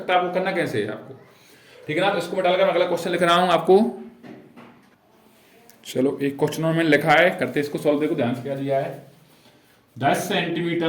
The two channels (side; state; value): both; identical; correlation 1.00